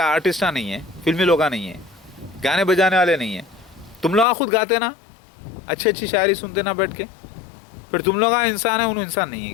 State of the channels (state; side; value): drops out; right; at 4.2 s